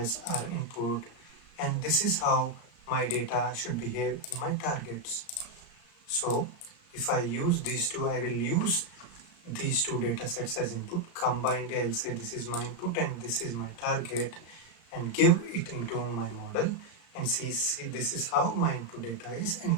our input, and this is how my data should behave in my targets. So if I use these two, I will use these two data sets as input. Combined, I'll say this is my input and this is my target, and give it into my model and see this is how my input data is and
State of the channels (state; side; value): late; right; 35 ms